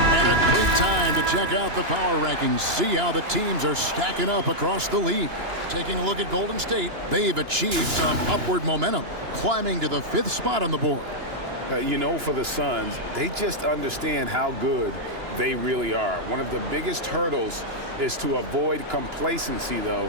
time to check out the power rankings. See how the teams are stacking up across the league. Taking a look at Golden State, they've achieved some upward momentum, climbing to the 5th spot on the board. You know, for the Suns, they just understand how good they really are. One of the biggest hurdles is to avoid complacency,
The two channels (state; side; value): late; left; 2.9 ms